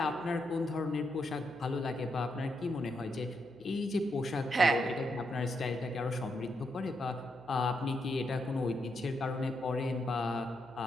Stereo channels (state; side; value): noise; left; hum, 30 dB below the sound